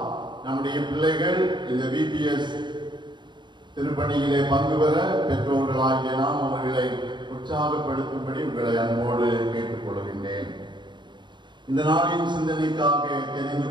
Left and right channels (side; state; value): left; late; 0.22 ms